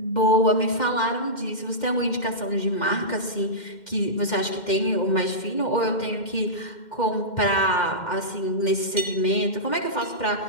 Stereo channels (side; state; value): right; late; 2.1 ms